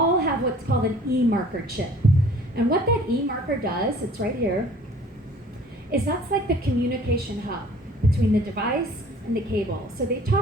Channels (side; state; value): both; normal; correlation 0.51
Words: have what's called an E-marker chip. And what that E-marker does, it's right here, is that's like the communication hub between the device and the cable. So they